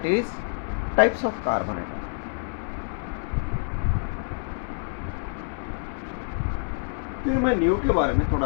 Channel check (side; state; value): right; silent; 60 dB below the other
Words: is types of carbon atom. फिर मैं नियो के बारे में